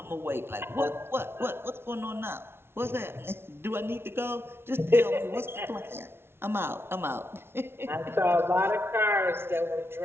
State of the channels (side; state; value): left; late; 0.12 ms